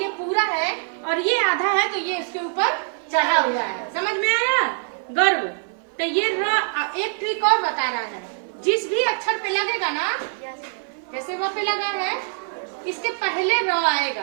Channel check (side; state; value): left; silent; 57 dB below the other